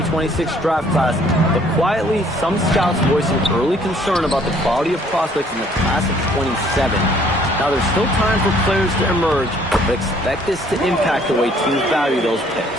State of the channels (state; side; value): normal; both; correlation 0.60